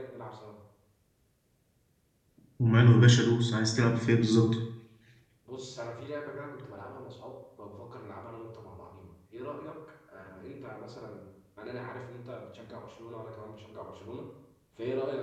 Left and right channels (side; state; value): both; identical; correlation 1.00